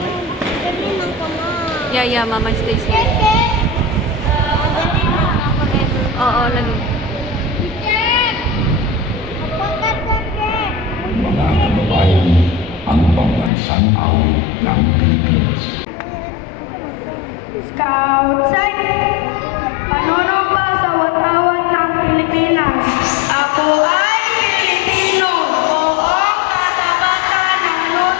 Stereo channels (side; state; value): right; drops out; at 13.5 s